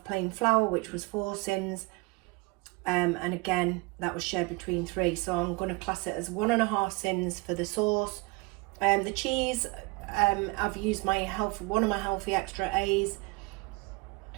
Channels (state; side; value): quieter; left; 25.6 dB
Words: plain flour, which was 4 sins. And again, that was shared between 3. So I'm going to class it as 1.5 sins for the sauce. The cheese, I've used one of my healthy extra A's